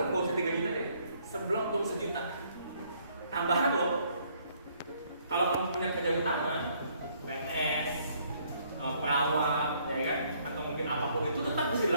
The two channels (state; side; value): inverted; both; correlation -0.66